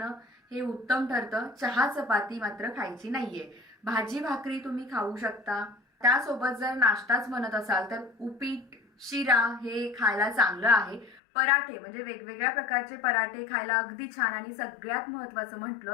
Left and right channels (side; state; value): right; drops out; at 11.2 s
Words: हे उत्तम ठरतं। चहा चपाती मात्र खायची नाहीये। भाजी भाकरी तुम्ही खाऊ शकता। त्यासोबत जर नाश्ताच म्हणत असाल तर उपीट शिरा हे खायला चांगलं आहे। पराठे म्हणजे वेगवेगळ्या प्रकारचे पराठे खायला अगदी छान। आणि सगळ्यात महत्त्वाचं